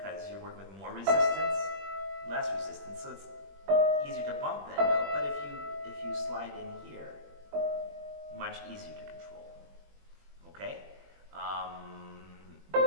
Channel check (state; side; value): late; left; 21 ms